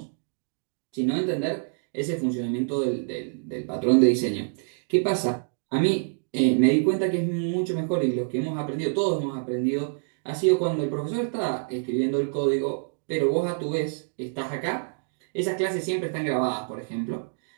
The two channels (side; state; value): left; silent; digital silence